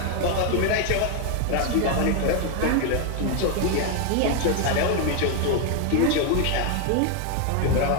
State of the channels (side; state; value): both; different; correlation 0.01